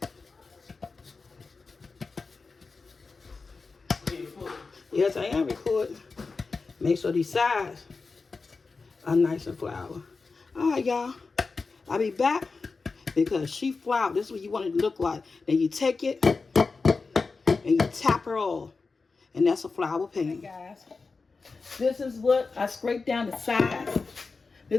Yes, I am recording. Make sure these sides are nice and floury. All right, y'all. I'll be back because she flour. This is what you want it to look like. Then you take it and you tap her off. And that's a flour pan. Hey guys, this is what I scraped down the sides.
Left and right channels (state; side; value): quieter; right; 4.3 dB